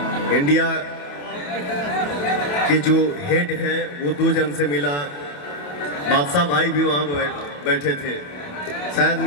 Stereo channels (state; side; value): late; right; 28 ms